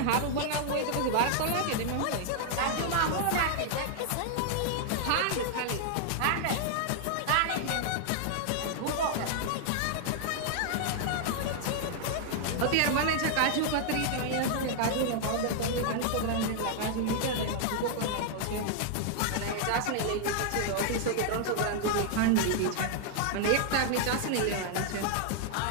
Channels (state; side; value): different; both; correlation -0.01